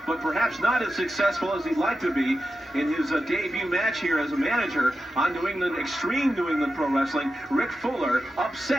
but perhaps not as successful as he'd like to be in his debut match here as a manager on New England, Extreme New England Pro Wrestling. Rick Fuller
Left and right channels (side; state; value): both; normal; correlation 0.90